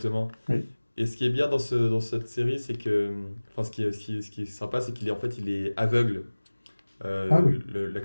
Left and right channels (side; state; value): both; inverted; correlation -1.00